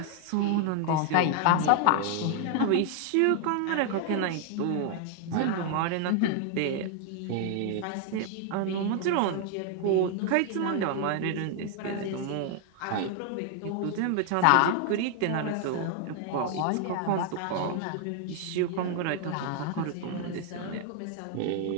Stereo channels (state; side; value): different; both; correlation 0.00